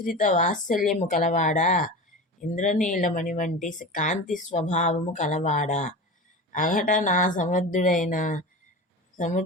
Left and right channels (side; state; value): both; normal; correlation 0.30